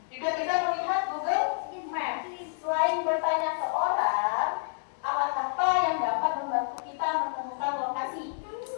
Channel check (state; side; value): silent; right; 59 dB below the other